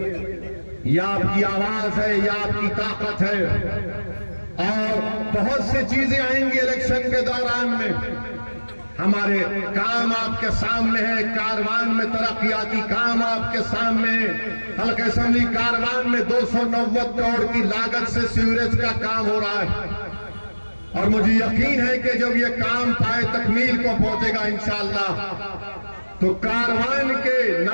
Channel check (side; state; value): both; inverted; correlation -1.00